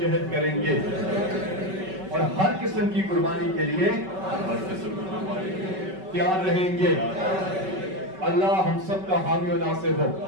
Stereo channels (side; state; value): left; late; 5.3 ms